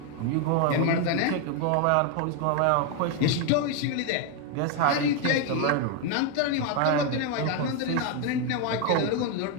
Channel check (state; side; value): different; both; correlation 0.01